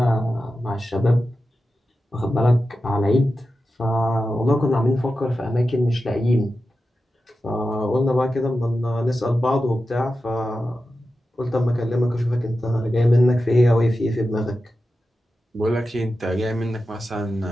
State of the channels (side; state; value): both; normal; correlation 0.92